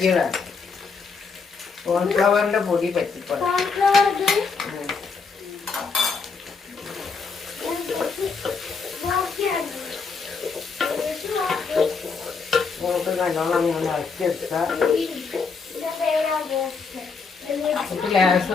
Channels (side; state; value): right; quieter; 5.0 dB